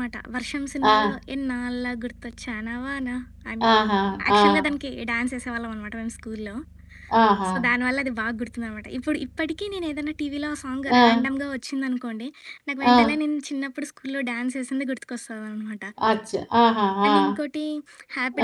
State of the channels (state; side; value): identical; both; correlation 1.00